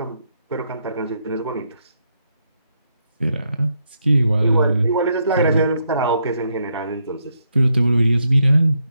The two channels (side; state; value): both; inverted; correlation -0.78